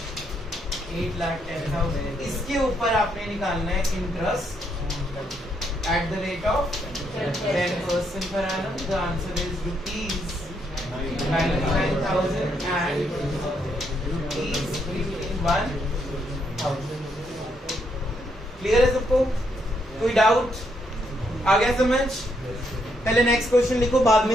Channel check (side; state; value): both; normal; correlation 0.75